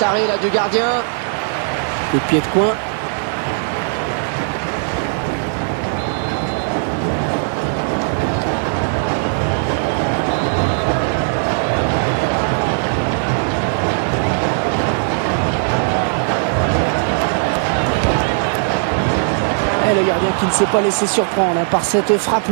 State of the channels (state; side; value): silent; left; 67 dB below the other